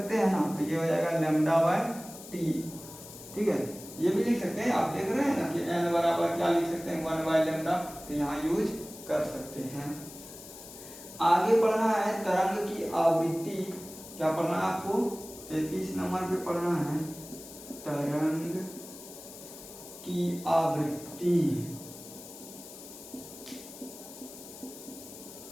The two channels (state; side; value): noise; left; hiss, 15 dB below the sound